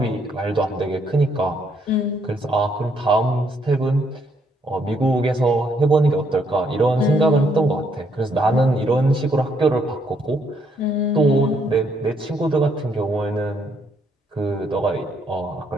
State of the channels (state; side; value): normal; both; correlation 0.72